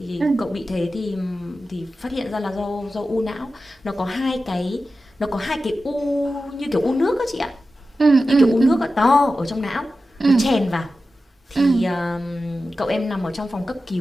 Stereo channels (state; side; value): normal; both; correlation 0.93